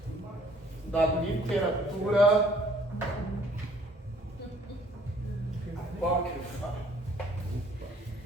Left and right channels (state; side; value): normal; both; correlation 0.59